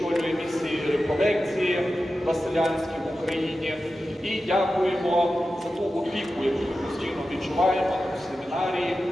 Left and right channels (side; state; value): both; normal; correlation 0.93